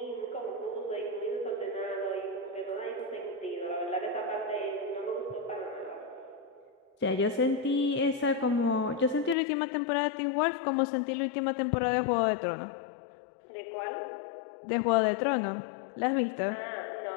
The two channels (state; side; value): drops out; right; at 9.3 s